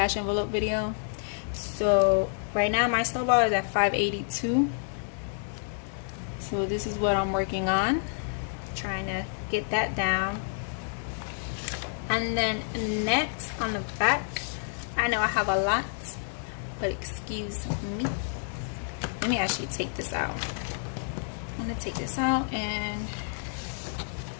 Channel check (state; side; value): silent; right; 58 dB below the other